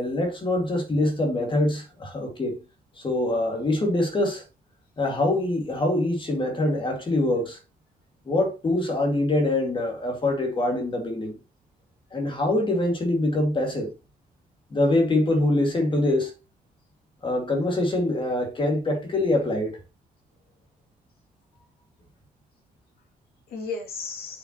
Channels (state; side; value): normal; both; correlation 0.68